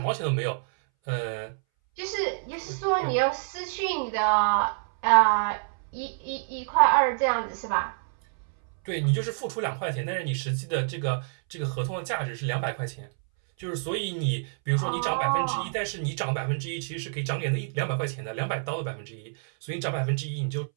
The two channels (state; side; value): silent; left; 60 dB below the other